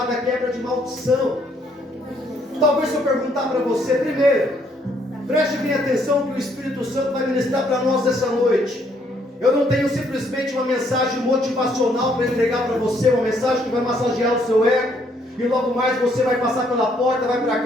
quebra de maldição. Talvez se eu perguntar para você, primeiro, preste bem atenção que o Espírito Santo vai ministrar para nós essa noite. Eu não tenho simplesmente uma mensagem motivacional para entregar para você, uma mensagem que vai massagear o seu ego, e logo mais você vai passar pela porta, vai para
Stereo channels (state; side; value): normal; both; correlation 0.69